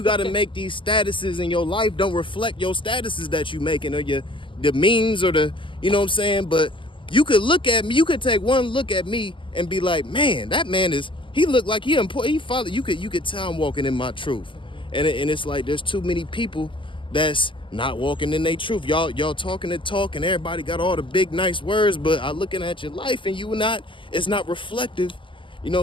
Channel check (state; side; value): late; right; 0.25 ms